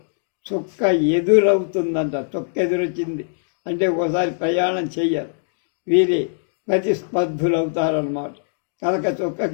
చుక్క ఎదురవుతుందంట. చుక్క ఎదురొచ్చింది అంటే ఒకసారి ప్రయాణం చెయ్యాలి. వీరి ప్రతిస్పర్ధులు అవుతారన్నమాట. కనుక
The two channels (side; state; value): right; silent; digital silence